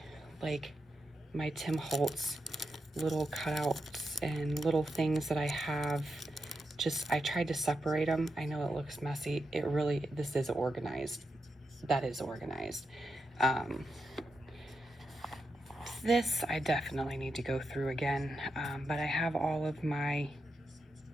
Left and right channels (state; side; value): normal; both; correlation 0.86